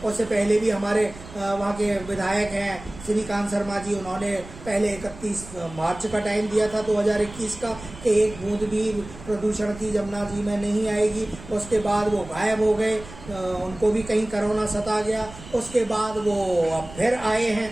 उससे पहले भी हमारे वहाँ के विधायक हैं श्रीकांत शर्मा जी, उन्होंने पहले 31 मार्च का टाइम दिया था 2021 का कि 1 बूंद भी प्रदूषण की यमुना जी में नहीं आएगी। उसके बाद वो गायब हो गए, उनको भी कहीं कोरोना सता गया। उसके बाद वो अब फिर आए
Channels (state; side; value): noise; right; rumble, 16 dB below the sound